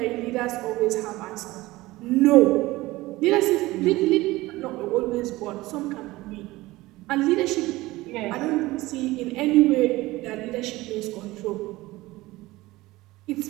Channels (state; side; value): quieter; left; 19.2 dB